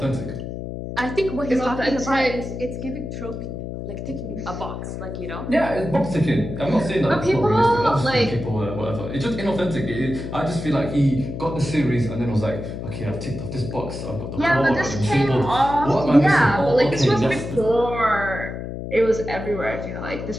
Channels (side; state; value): left; noise; hum, 7 dB below the sound